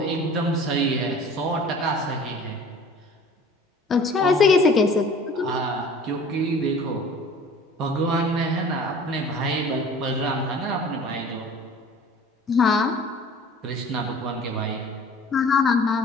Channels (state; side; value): normal; both; correlation 0.46